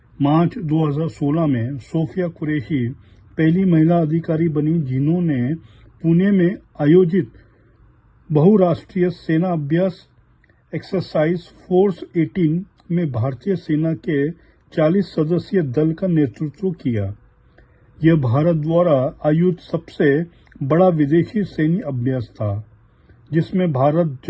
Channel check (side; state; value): both; identical; correlation 1.00